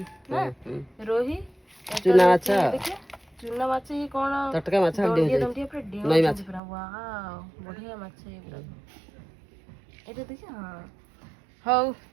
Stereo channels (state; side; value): drops out; left; at 6.6 s